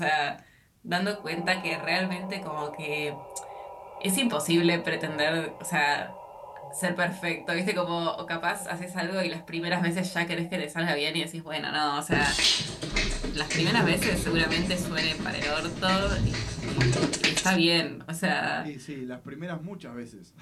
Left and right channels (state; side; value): identical; both; correlation 1.00